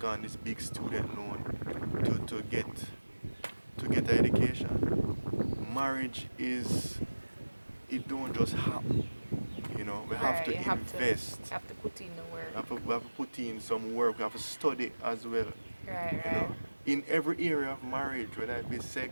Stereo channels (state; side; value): inverted; both; correlation -1.00